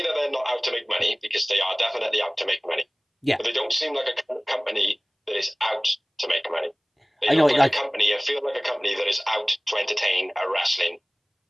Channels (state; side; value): identical; both; correlation 1.00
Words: that they're not out to make money, because they are definitely out to make money. Yeah. But they don't seem like a company that is out to make money. They I know, look like a company and feel like a company that is out to entertain a wrestling